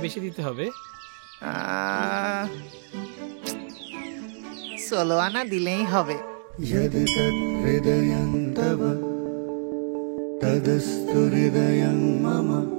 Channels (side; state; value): left; silent; digital silence